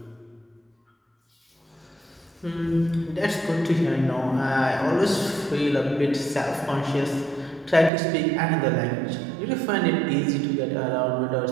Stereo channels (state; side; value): drops out; left; at 7.9 s